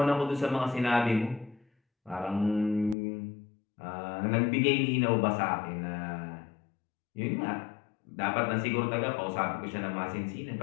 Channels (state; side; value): drops out; right; at 3.0 s